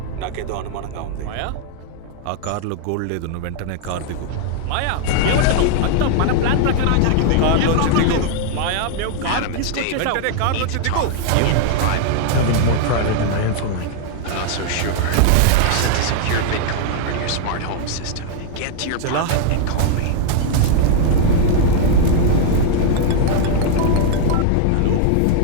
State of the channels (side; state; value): both; different; correlation 0.00